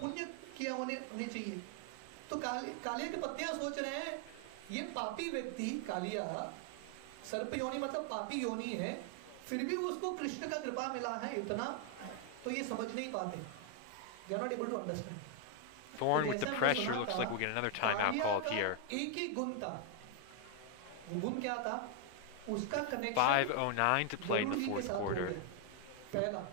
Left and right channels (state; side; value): different; both; correlation 0.00